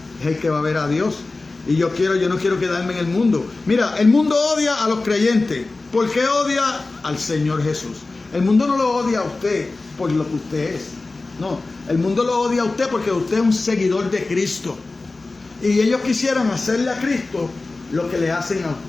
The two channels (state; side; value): quieter; right; 3.4 dB